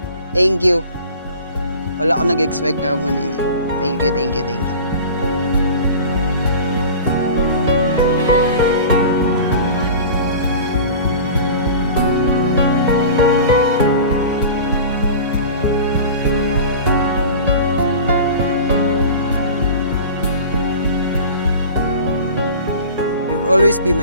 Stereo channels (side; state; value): both; inverted; correlation -0.38